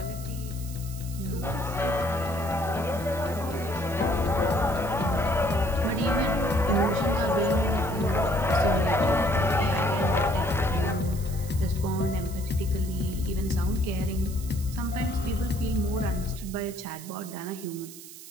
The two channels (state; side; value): noise; right; hiss, 15 dB below the sound